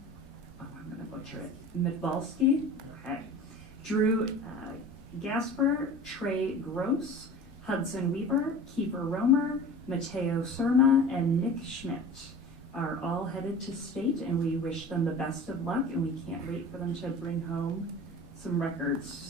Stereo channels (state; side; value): normal; both; correlation 0.39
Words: oh, I'm going to butcher it, Midbalski, okay, Drew Gasper, Trey Gross, Hudson Weaver, Kiefer Romer, Mateo Surma, and Nick Schmidt are all headed to state, and we wish them the best of luck, and we can't wait for them to bring home some records.